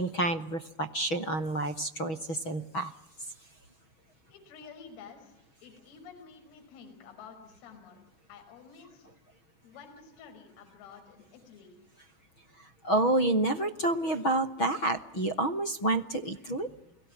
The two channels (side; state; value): right; late; 6.2 ms